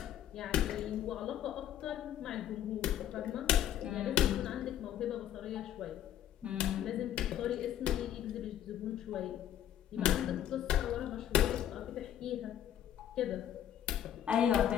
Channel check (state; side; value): quieter; right; 11.0 dB